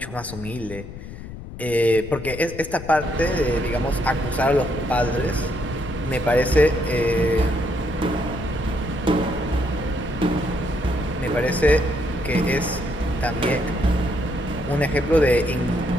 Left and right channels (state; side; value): noise; left; rumble, 12 dB below the sound